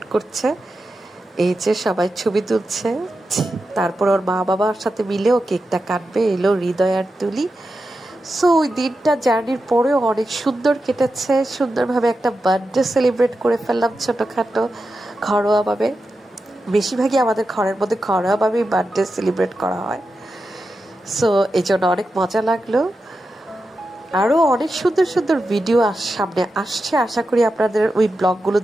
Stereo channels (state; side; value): normal; both; correlation 0.90